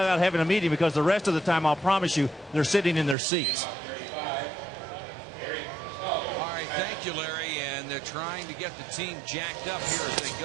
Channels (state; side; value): drops out; left; at 3.2 s